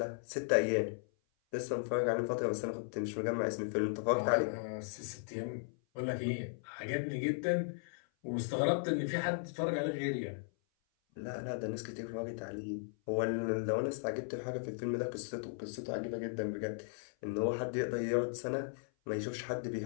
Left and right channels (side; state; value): right; silent; 53 dB below the other